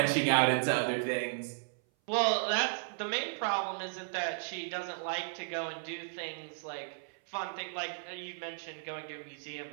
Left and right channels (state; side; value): silent; left; 55 dB below the other